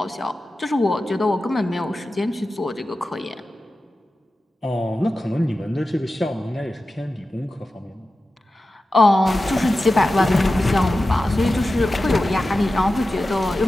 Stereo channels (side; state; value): both; normal; correlation 0.93